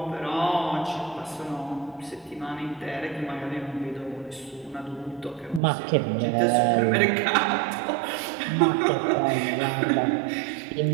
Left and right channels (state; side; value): drops out; left; at 5.6 s